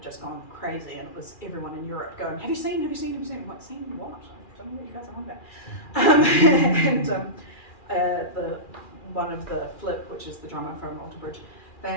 just gone crazy, and it was everyone in Europe going, have you seen? I'm like, seen what? I don't know what you guys are on about. And one of the Flip, which is the drummer from Alter Bridge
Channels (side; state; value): right; late; 2.4 ms